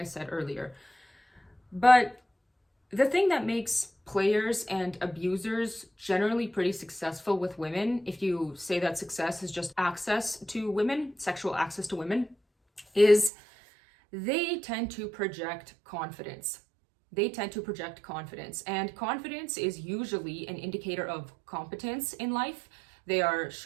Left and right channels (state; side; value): drops out; left; at 13.3 s